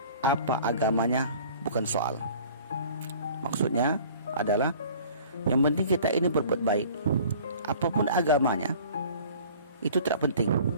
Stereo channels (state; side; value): inverted; both; correlation -0.48